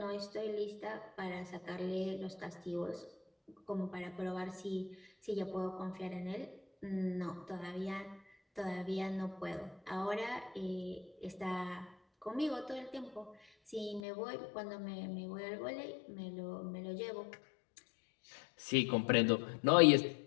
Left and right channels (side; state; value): right; drops out; at 14.0 s